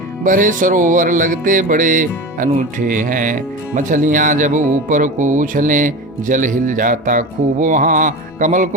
भरे सरोवर लगते बड़े अनूठे हैं। मछलियां जब ऊपर को उछलें जल हिल जाता खूब वहाँ। कमल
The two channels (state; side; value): normal; both; correlation 0.28